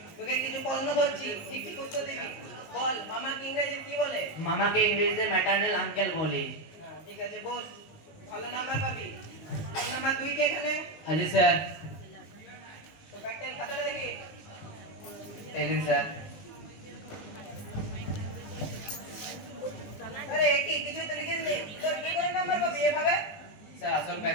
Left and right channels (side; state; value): right; late; 19 ms